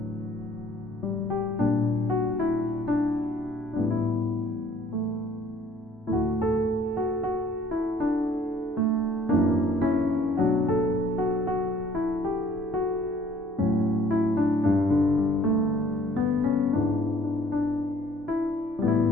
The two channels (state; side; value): normal; both; correlation 0.58